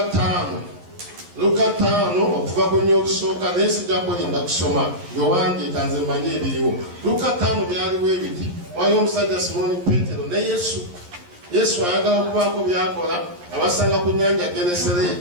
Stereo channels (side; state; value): left; late; 11 ms